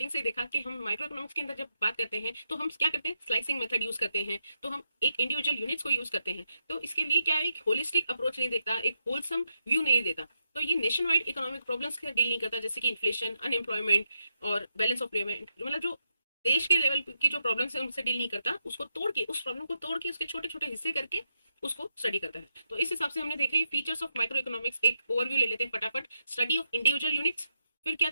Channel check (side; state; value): both; inverted; correlation -0.84